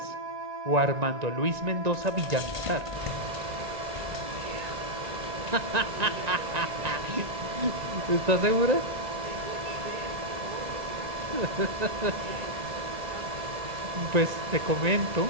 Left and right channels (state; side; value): late; left; 1.9 ms